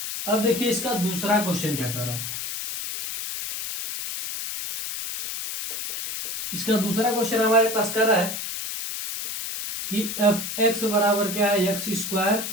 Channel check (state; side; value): noise; left; hiss, 5 dB below the sound